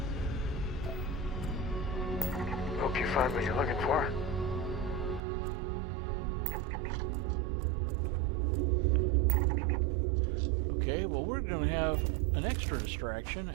Hope you find what you're looking for. Okay, well, we're going to have an extra distraction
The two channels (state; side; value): drops out; left; at 5.2 s